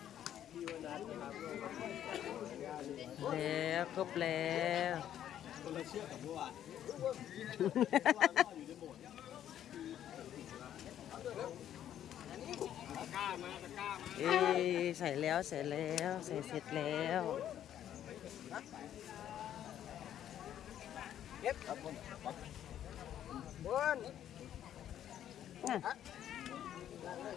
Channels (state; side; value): quieter; right; 10.8 dB